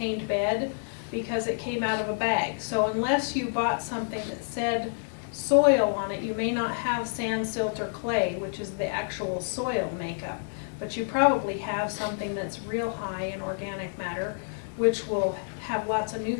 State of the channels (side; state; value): right; silent; digital silence